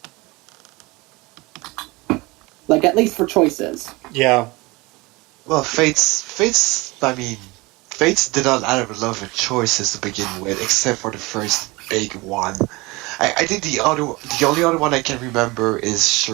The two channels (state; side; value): quieter; left; 23.7 dB